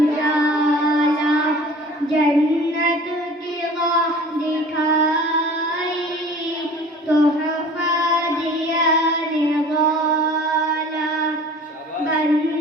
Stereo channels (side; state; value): both; normal; correlation 0.45